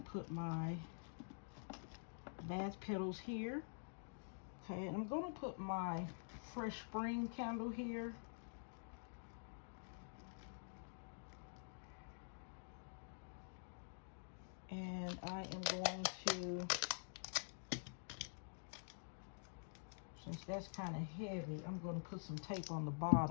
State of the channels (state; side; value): silent; right; digital silence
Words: put my bath petals here. Okay, and I'm going to put my Fresh Spring candle here. And I am going to, since that's kind of heavy, I'm going to put some tape on the